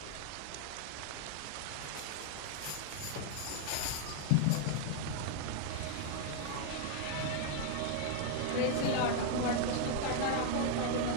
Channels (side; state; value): both; different; correlation 0.00